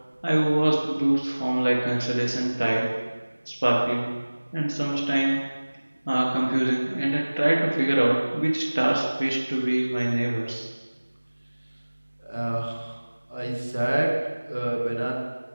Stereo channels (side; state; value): both; inverted; correlation -1.00